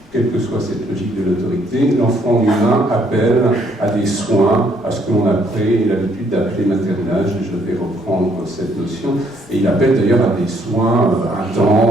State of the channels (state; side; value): normal; both; correlation 0.68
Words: Quelle que soit cette logique de l'autorité, l'enfant humain appelle à des soins, à ce que l'on a pris l'habitude d'appeler maternage, et je vais reprendre cette notion, et il appelle d'ailleurs à des soins